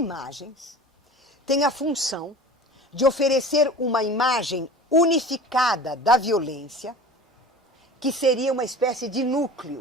têm a função de oferecer uma imagem unificada da violência, que seria uma espécie de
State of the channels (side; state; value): both; normal; correlation 0.37